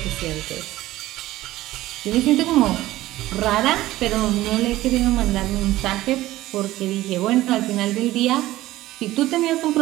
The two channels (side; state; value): left; quieter; 16.2 dB